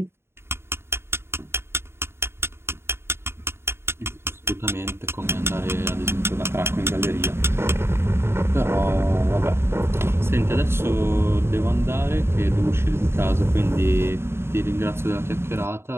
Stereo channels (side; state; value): left; late; 0.12 ms